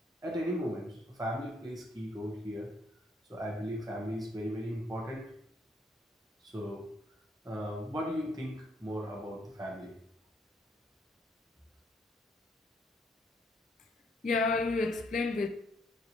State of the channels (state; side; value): normal; both; correlation 0.70